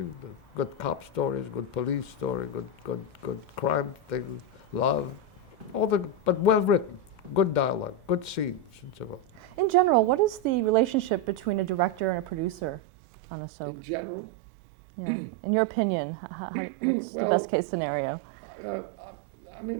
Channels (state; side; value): drops out; left; at 12.8 s